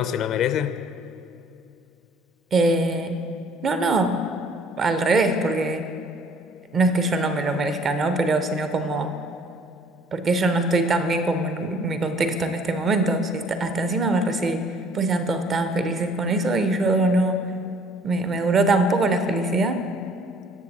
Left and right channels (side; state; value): both; normal; correlation 0.57